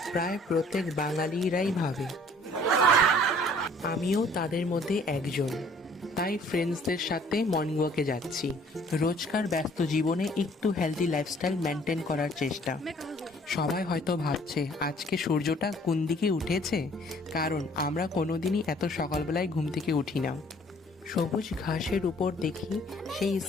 প্রায় প্রত্যেক বাঙালিরাই ভাবে, আমিও তাদের মধ্যে একজন। তাই ফ্রেন্ডসদের সাথে মর্নিং ওয়াকে যাচ্ছি। রোজকার ব্যস্ত জীবনে একটু হেলদি লাইফস্টাইল মেনটেন করার চেষ্টা। সবাই হয়তো ভাবছে আজকে সূর্যটা কোন দিকে উঠেছে, কারণ আমরা কোনোদিনই এত সকালবেলায় ঘুম থেকে উঠি না। সবুজ ঘাসের উপর দেখি সেই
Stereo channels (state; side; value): normal; both; correlation 0.57